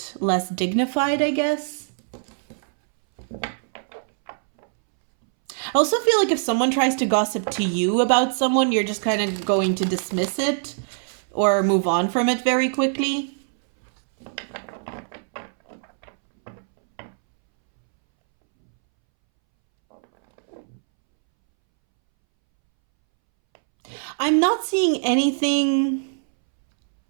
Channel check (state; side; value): silent; left; 64 dB below the other